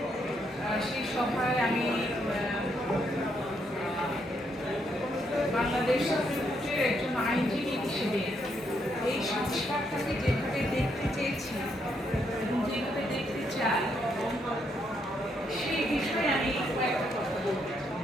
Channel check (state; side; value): normal; both; correlation 0.76